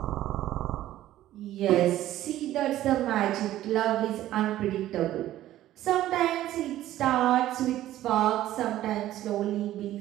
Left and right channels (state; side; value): quieter; left; 13.8 dB